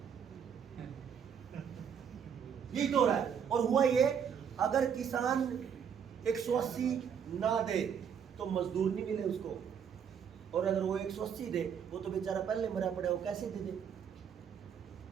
यही तो हो रहा है। और हुआ ये, अगर किसान 180 ना दे तो मजदूर नहीं मिले उसको, और अगर वो 180 दे वो तो बेचारा पहले मरा पड़ा, वो कैसे दे दे?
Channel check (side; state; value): left; quieter; 7.7 dB